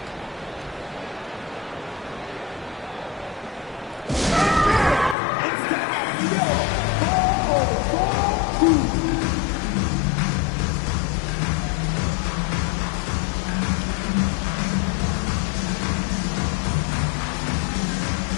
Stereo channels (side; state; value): right; drops out; at 5.2 s